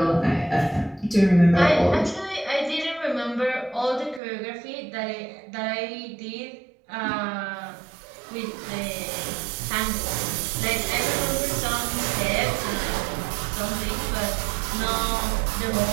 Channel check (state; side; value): drops out; left; at 4.2 s